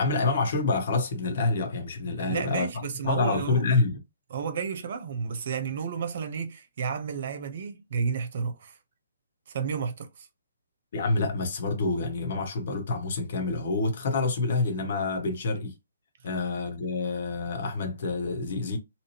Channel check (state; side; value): inverted; both; correlation -0.51